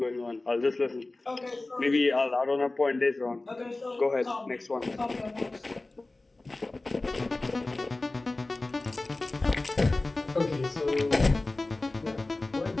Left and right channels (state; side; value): quieter; right; 3.0 dB